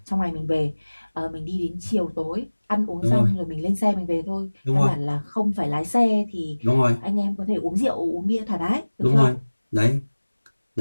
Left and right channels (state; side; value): inverted; both; correlation -1.00